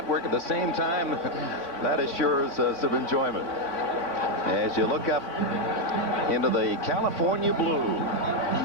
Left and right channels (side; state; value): right; late; 3.6 ms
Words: at the same time. That assures some enjoyment. As you look up into the California blue,